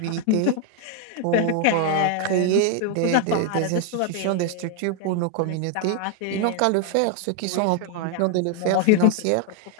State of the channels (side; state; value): both; different; correlation 0.01